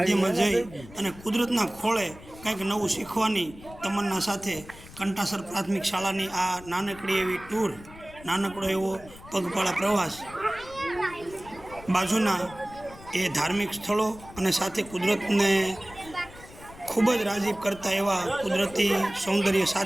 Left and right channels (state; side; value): noise; left; rumble, 19 dB below the sound